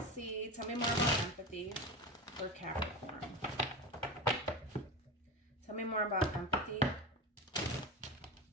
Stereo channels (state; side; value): normal; both; correlation 0.24